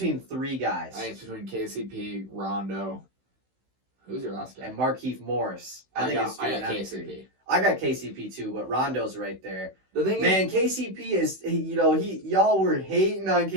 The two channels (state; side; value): late; left; 16 ms